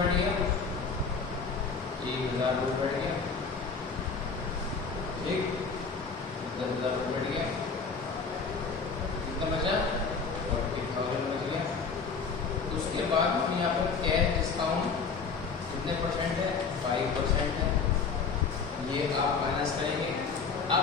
गया? 1,000 रुपये बढ़ गया, ठीक, 10,000 रुपये बढ़ गया, कितना बचा? 40,000 बच गया। उसके बाद हम यहाँ पर कैश डिस्काउंट कितने परसेंट है? 5% है, ये आप माइनस करेंगे। अब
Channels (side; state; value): right; quieter; 5.2 dB